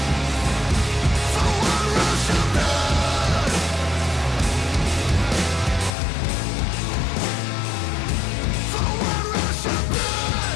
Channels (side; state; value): right; drops out; at 5.9 s